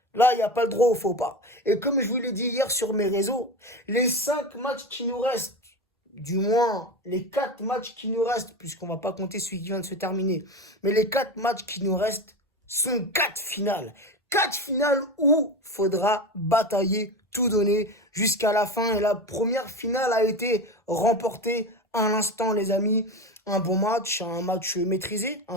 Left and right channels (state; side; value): normal; both; correlation 0.24